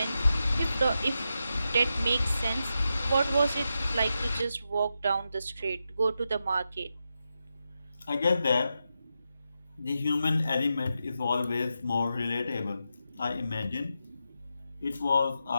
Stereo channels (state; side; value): inverted; both; correlation -0.88